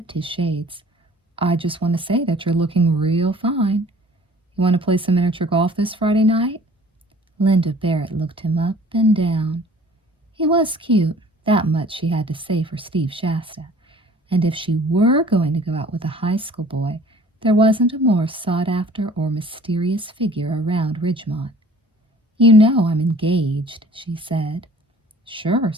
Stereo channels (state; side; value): normal; both; correlation 0.50